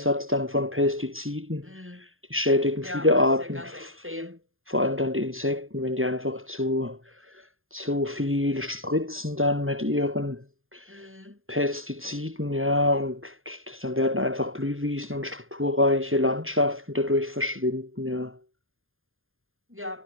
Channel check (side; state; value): left; late; 0.60 ms